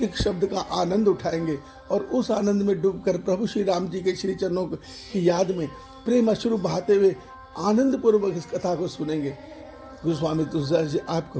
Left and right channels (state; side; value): identical; both; correlation 1.00